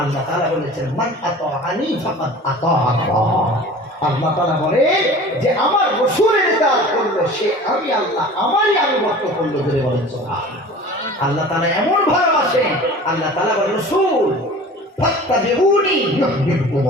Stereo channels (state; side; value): normal; both; correlation 0.41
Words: তাআলা বলেছেন মান আতাআনি ফাকাদ আতা আল্লাহ। আল্লাহ তাআলা বলে যে আমার রাসূলের ইতাআত করলো সে আমি আল্লাহ আমারই আনুগত্য করলো। ধরে বলেন সুবহানাল্লাহ। আল্লাহ তাআলা এমন ভালোবাসেন, আল্লাহ তাআলা বলেন রাসূল ফাত্তাবিউনি